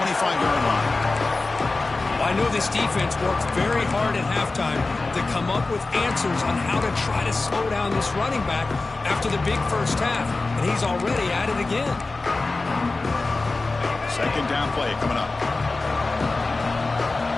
line. I know this defense worked very hard at halftime to come up with answers on how to try to slow down this running back after the big first half. And he's already at it again. Second down play coming up.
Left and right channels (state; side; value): quieter; right; 3.5 dB